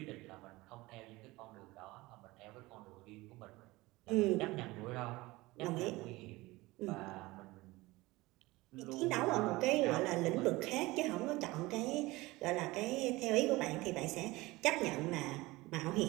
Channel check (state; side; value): quieter; left; 20.7 dB